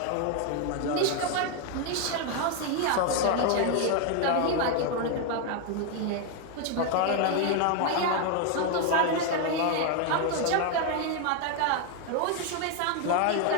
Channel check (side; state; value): both; different; correlation 0.01